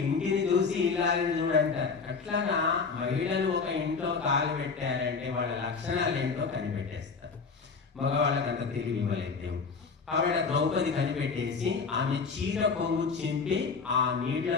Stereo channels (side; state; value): right; quieter; 5.0 dB